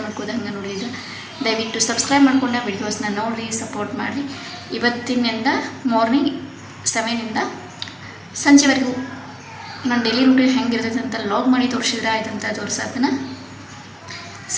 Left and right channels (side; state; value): both; identical; correlation 1.00